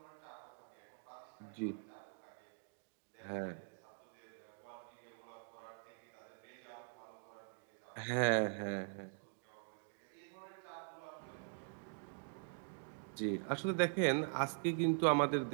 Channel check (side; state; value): left; silent; digital silence